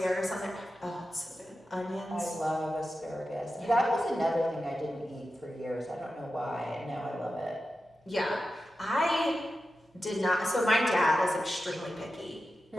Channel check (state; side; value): normal; both; correlation 0.92